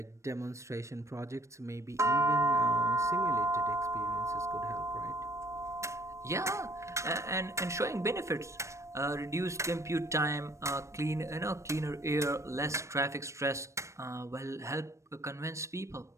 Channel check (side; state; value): left; late; 0.14 ms